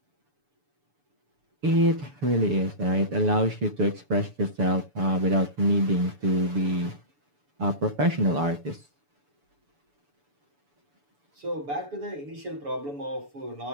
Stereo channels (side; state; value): left; late; 6.9 ms